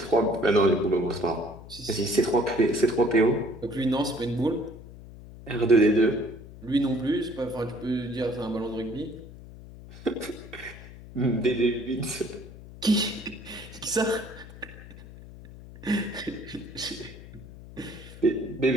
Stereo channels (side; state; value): left; noise; hum, 16 dB below the sound